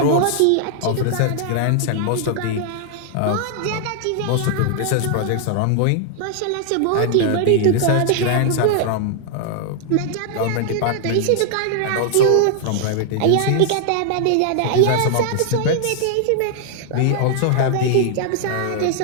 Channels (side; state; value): both; different; correlation 0.00